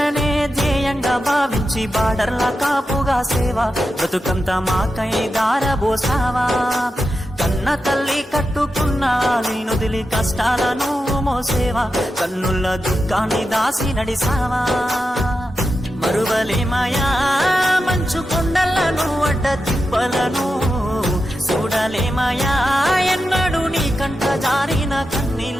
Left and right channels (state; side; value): normal; both; correlation 0.90